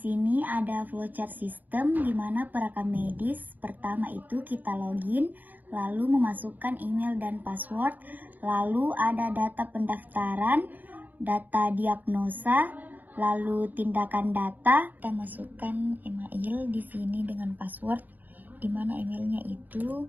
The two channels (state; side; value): late; left; 0.084 ms